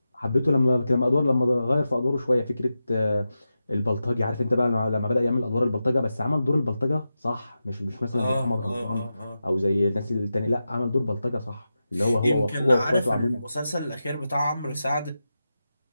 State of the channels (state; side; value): inverted; both; correlation -0.91